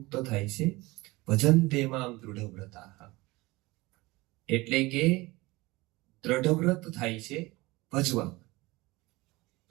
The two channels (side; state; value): left; quieter; 21.6 dB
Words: થાય છે. ભજન્તે મામ દૃઢવ્રતાઃ, એટલે કે દ્રઢવ્રત થાય છે ભજવા.